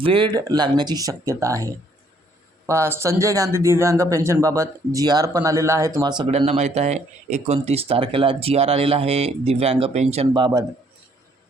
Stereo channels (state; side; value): normal; both; correlation 0.65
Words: वेळ लागण्याची शक्यता आहे. संजय गांधी दिव्यांग पेन्शनबाबत जी-आर पण आलेला आहे. तुम्हाला सगळ्यांना माहीत आहे 29 तारखेला जी-आर आलेला आहे दिव्यांग पेन्शनबाबत.